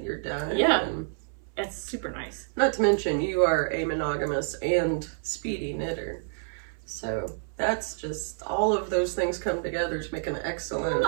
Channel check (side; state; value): left; silent; 59 dB below the other